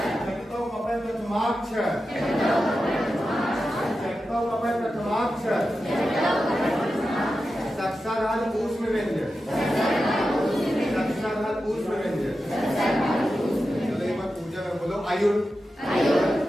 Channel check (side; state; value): both; normal; correlation 0.91